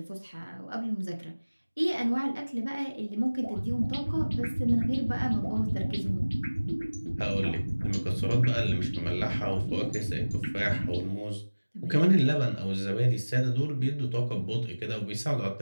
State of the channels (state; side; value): inverted; both; correlation -1.00